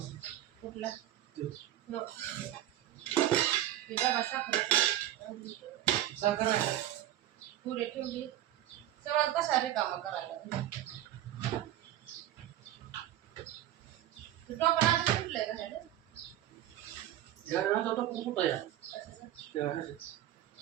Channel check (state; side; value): quieter; left; 12.8 dB